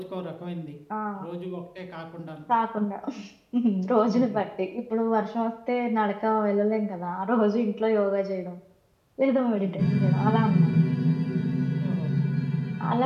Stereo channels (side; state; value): both; identical; correlation 1.00